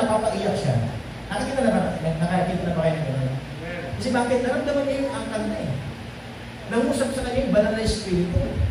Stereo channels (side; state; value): both; identical; correlation 1.00